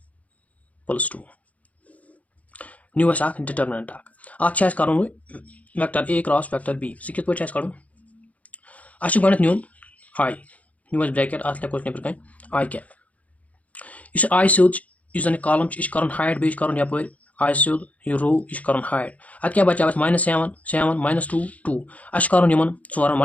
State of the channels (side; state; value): right; late; 0.070 ms